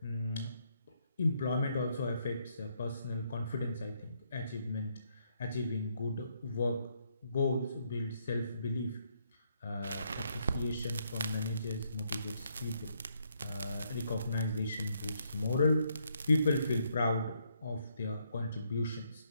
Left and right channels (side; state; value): both; inverted; correlation -0.74